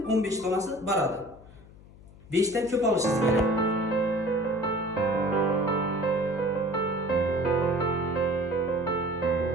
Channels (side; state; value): left; noise; hum, 21 dB below the sound